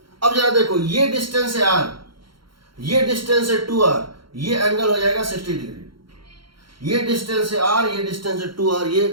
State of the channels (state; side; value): late; left; 0.73 ms